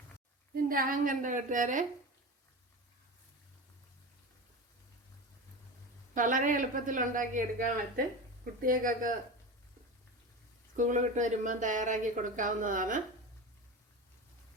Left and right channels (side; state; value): both; normal; correlation 0.26